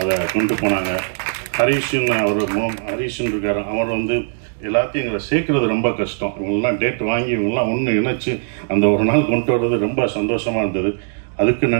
அதை கொண்டு போனாங்க. ஹரீஷன் இருக்கார், அவர் வந்து எல்லாத்தையும் எங்களை சேர்க்கறது ரொம்ப கஷ்டம். இவங்கெல்லாம் டேட் வாங்கி இவங்கெல்லாம் ஒன்று இணைச்சி அந்த ஒரு நாள் கொண்டு வர்றது ரொம்ப சந்தோஷமாக இருந்தது. அதுக்கு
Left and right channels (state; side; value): silent; left; digital silence